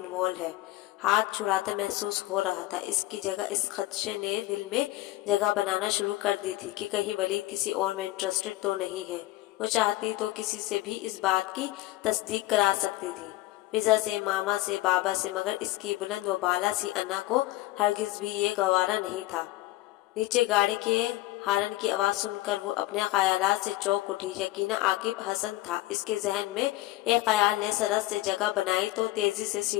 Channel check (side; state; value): right; quieter; 17.5 dB